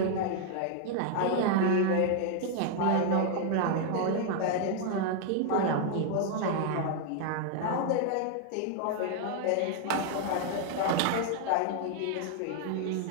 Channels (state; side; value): different; both; correlation 0.00